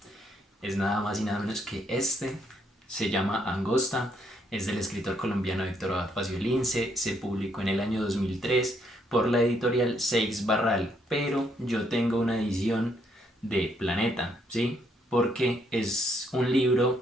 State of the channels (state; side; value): normal; both; correlation 0.72